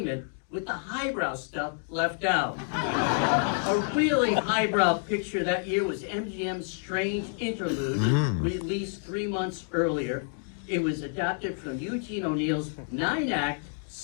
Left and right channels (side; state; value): right; silent; 59 dB below the other